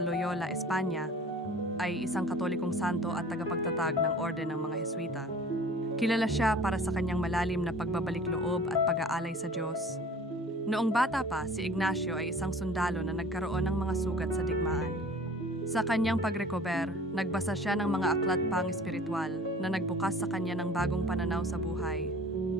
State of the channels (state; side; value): normal; both; correlation 0.45